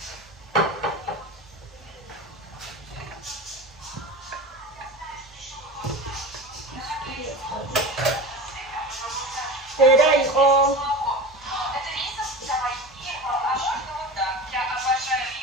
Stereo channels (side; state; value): both; normal; correlation 0.30